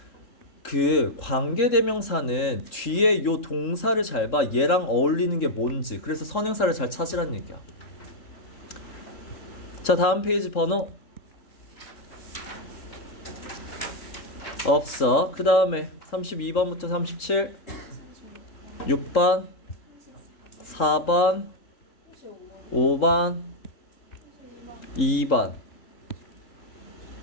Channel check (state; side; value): late; right; 3.7 ms